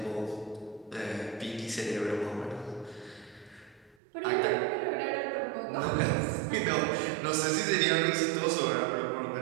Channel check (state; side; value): drops out; left; at 4.0 s